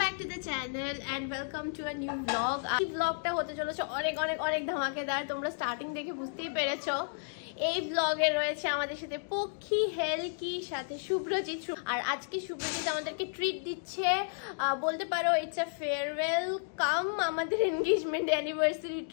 back to the channel and welcome to a new vlog. এই ব্লগটা হতে চলেছে অনেক অনেক অনেক ধামাকেদার। তোমরা স্টার্টিং দেখে বুঝতেই পেরেছো। এই ব্লগে রয়েছে আমাদের সাথে পক্ষী, হেলকি, সাথে শুভ্রজিৎ। আর আজকে শুভ্রজিৎ আমাদেরকে ট্রিট দিচ্ছে, বলতে পারো ইটস আ ফেয়ারওয়েল কাম আমাদের এনগেজমেন্ট অ্যানিভার্সারি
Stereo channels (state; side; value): silent; right; digital silence